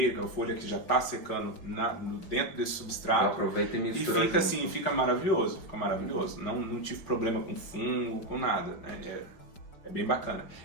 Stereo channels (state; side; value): late; right; 5.3 ms